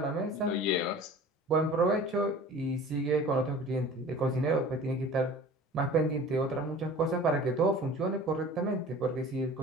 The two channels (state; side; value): normal; both; correlation 0.42